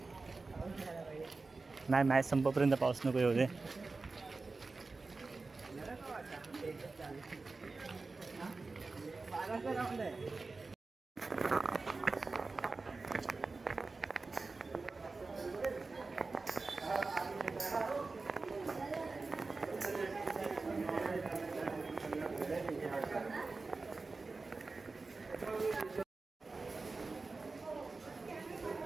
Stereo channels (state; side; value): quieter; left; 3.8 dB